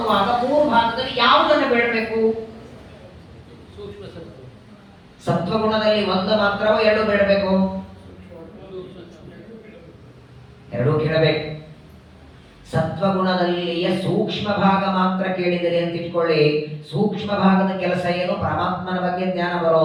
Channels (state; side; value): identical; both; correlation 1.00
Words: 3 ಭಾಗದಲ್ಲಿ ಯಾವುದನ್ನು ಬೇಡಬೇಕು? ಸತ್ವಗುಣದಲ್ಲಿ 1 ಮಾತ್ರವೋ 2 ಬೇಡಬೇಕು? 2 ಕೇಳಬೇಕು. ಸತ್ವಗುಣದಲ್ಲಿಯ ಸೂಕ್ಷ್ಮ ಭಾಗ ಮಾತ್ರ ಕೇಳಿದರೆ ಅಂತ ಇಟ್ಕೊಳ್ಳಿ. ಸೂಕ್ಷ್ಮ ಭಾಗದ ಕೆಲಸ ಏನು? ಪರಮಾತ್ಮನ ಬಗ್ಗೆ ಜ್ಞಾನ